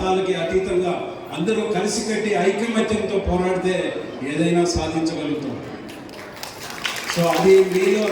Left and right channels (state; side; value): identical; both; correlation 1.00